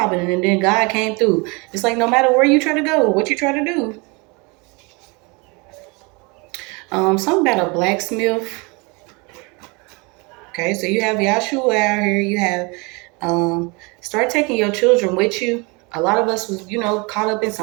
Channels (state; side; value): quieter; left; 28.6 dB